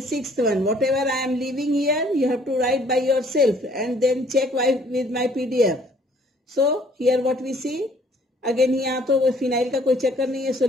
sixth one. Whatever I am leaving here, you have to write by yourself and then check with my PDF. So here what we see, again यहाँ तो phenyl का कोई चक्कर नहीं है. So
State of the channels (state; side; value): normal; both; correlation 0.59